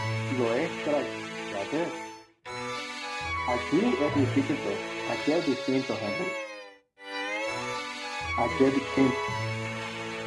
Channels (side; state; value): both; identical; correlation 1.00